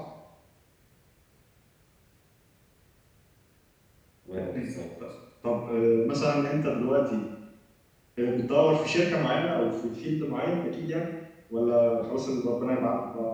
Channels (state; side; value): identical; both; correlation 1.00